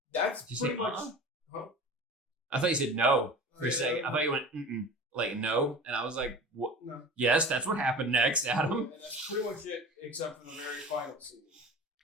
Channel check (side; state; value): both; normal; correlation 0.37